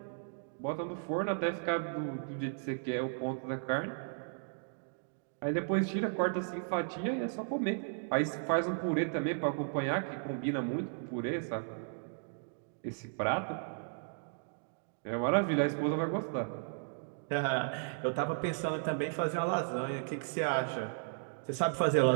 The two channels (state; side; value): silent; left; digital silence